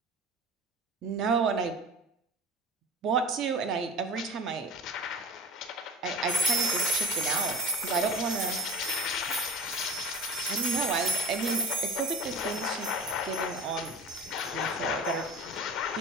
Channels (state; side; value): normal; both; correlation 0.33